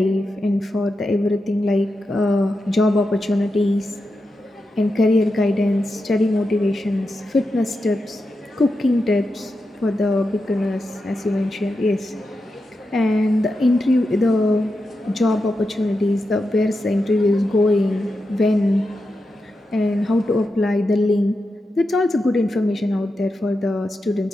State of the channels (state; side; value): normal; both; correlation 0.88